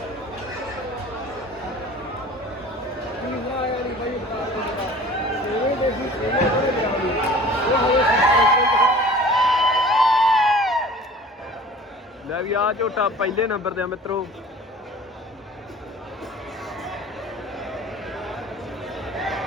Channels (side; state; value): both; normal; correlation 0.44